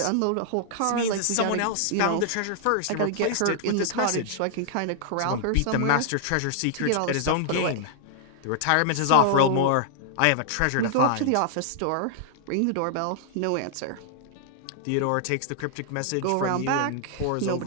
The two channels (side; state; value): both; different; correlation -0.01